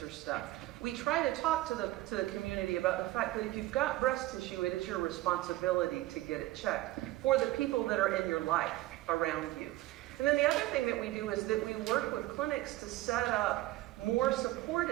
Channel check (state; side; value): quieter; left; 17.0 dB